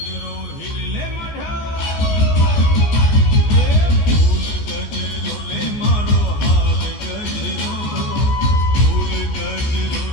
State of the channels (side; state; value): right; late; 14 ms